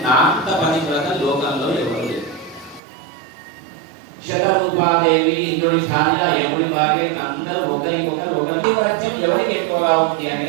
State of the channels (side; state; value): left; drops out; at 2.8 s